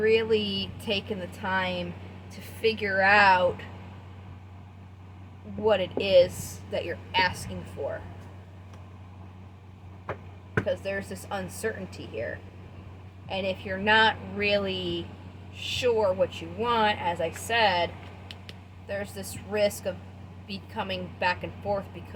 taken the time to figure out what it is that you're asking for? Because there's this uncertainty here, and if you're not really sure what you want, as I said, there's this risk of becoming back and forth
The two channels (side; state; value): both; identical; correlation 1.00